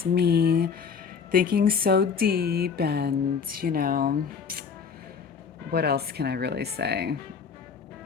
me, thinking so deep and, what else can I really say?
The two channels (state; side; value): quieter; right; 6.2 dB